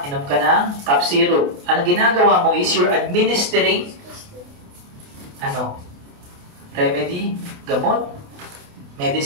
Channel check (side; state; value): left; late; 28 ms